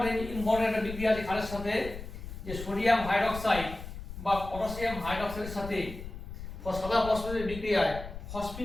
একটা বিক্রিয়া আছে ক্ষারের সাথে, যে সোডিয়াম হাইড্রক্সাইড বা পটাশিয়াম হাইড্রক্সাইডের সাথে সাদা ফসফরাসের বিক্রিয়ায়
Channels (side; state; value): left; noise; rumble, 10 dB below the sound